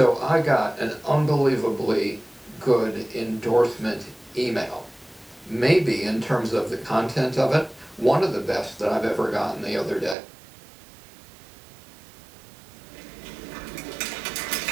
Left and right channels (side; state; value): left; drops out; at 10.2 s